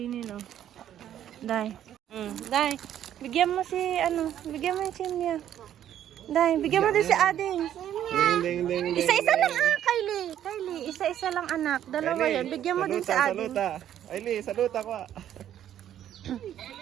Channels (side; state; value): left; quieter; 10.9 dB